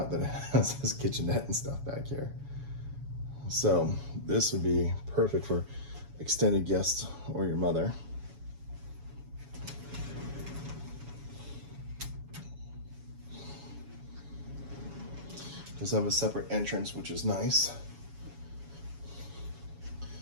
that it has this kitchenette and stuff back here. So this would be perfect for extended guests or your mother. Does have a separate entrance, which is nice.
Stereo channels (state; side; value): late; left; 7.1 ms